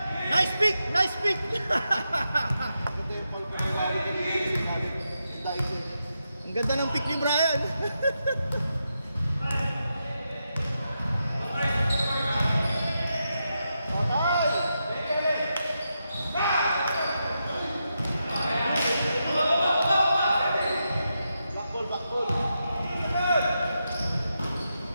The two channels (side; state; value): both; inverted; correlation -0.86